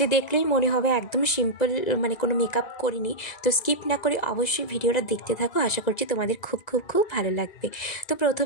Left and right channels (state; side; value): late; right; 2.0 ms